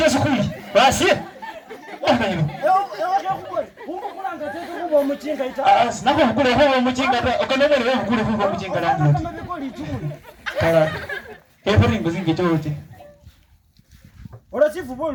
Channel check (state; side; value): identical; both; correlation 1.00